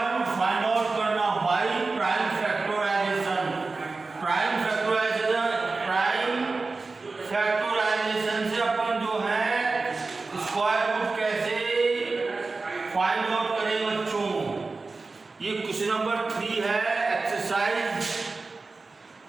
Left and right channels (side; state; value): left; quieter; 3.8 dB